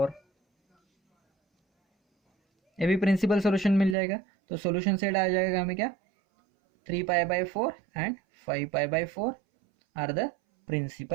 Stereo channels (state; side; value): drops out; left; at 4.0 s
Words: ये भी प्रिंसिपल सॉल्यूशन मिल जाएगा. तो सॉल्यूशन सेट आ जाएगा हमें क्या, 3 pi by 4 and 5 pi by 4 are the